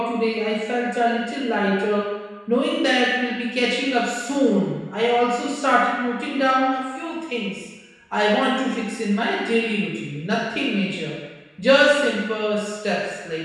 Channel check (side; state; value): both; identical; correlation 1.00